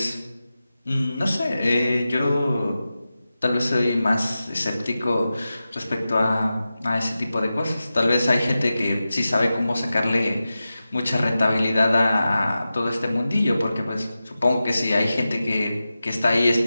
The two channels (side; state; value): both; inverted; correlation -0.93